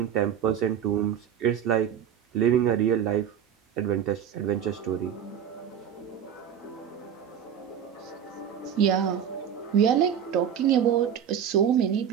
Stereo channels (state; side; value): quieter; left; 8.9 dB